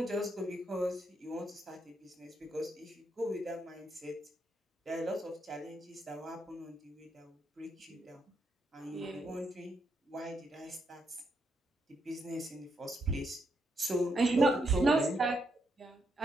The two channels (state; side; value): normal; both; correlation 0.79